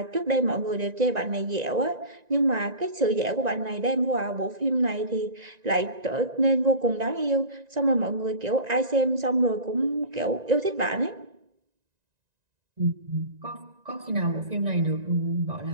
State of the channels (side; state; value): left; late; 1.9 ms